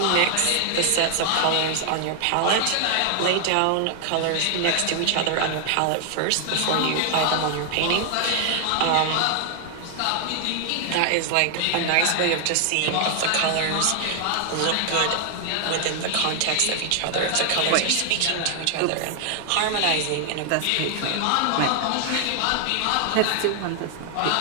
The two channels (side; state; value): both; different; correlation 0.00